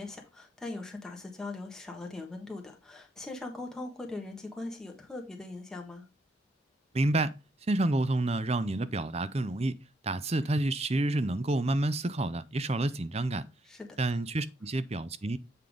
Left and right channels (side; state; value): both; normal; correlation 0.75